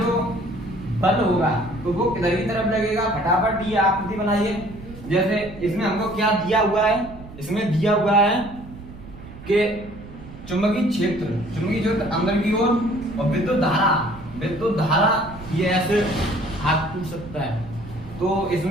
बल होगा तो वो किधर की तरफ लगेगा। फटाफट ये आकृति बनाइए। जैसे इसमें हमको क्या दिया हुआ है, इसमें दिया हुआ है कि चुंबकीय क्षेत्र अंदर की ओर और विद्युत धारा ये ऐसे हाथ टूट सकता है। तो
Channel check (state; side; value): noise; right; rumble, 16 dB below the sound